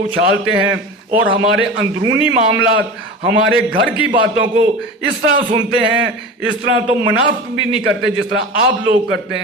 اچھالتے ہیں اور ہمارے اندرونی معاملات، ہمارے گھر کی باتوں کو اس طرح سنتے ہیں، اس طرح تو منافق بھی نہیں کرتے جس طرح آپ لوگ کرتے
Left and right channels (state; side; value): normal; both; correlation 0.31